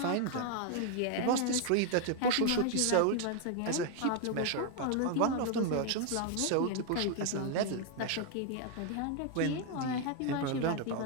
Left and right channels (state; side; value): different; both; correlation 0.01